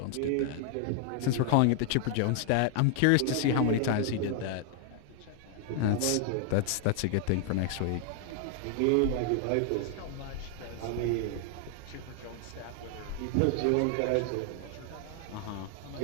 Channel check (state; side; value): different; both; correlation 0.00